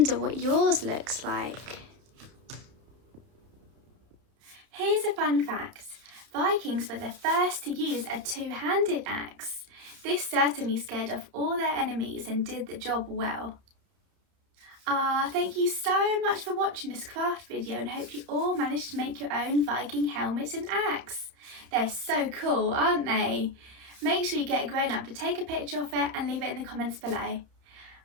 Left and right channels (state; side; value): late; left; 30 ms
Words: what yours looks like. Here's a fun fact. Vikings were the first to use a two-handed axe. This certainly scared off all their enemies and did the job well. Thank you so much for watching this craft video and hope you all managed to make your own Viking helmet and axe. They're so cool, aren't they? Make sure you get a grown-up to take a picture of it and leave it in the comments below.